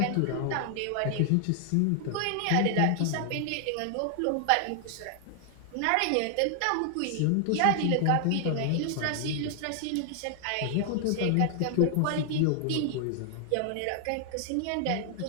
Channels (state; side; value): different; both; correlation 0.00